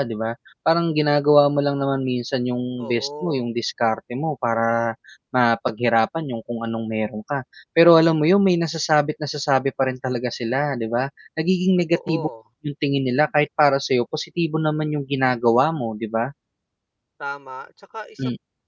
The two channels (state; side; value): identical; both; correlation 1.00